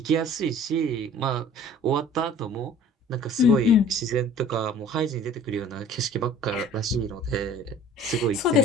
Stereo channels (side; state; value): both; normal; correlation 0.48